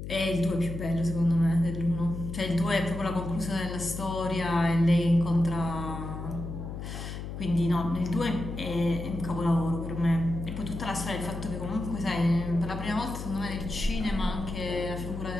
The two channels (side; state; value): left; noise; hum, 7 dB below the sound